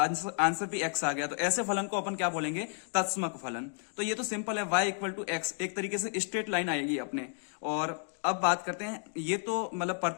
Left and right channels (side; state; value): right; silent; 56 dB below the other